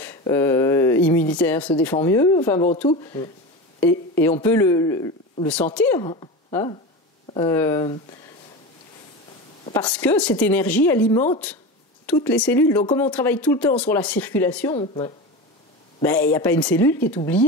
immunitaire se défend mieux, enfin bon, tout. Et on peut le sentir. Hein, parce que cette énergie alimente toutes les cellules. Donc comme on travaille tout le temps sur la circulation, il n'y a pas une cellule qui est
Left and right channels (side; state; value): both; normal; correlation 0.26